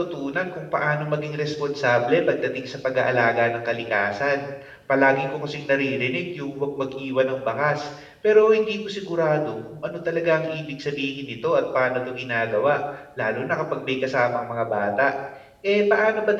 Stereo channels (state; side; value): identical; both; correlation 1.00